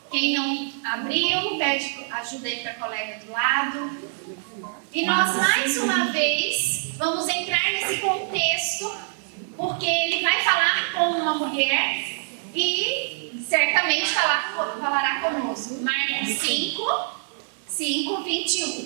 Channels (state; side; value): silent; left; 57 dB below the other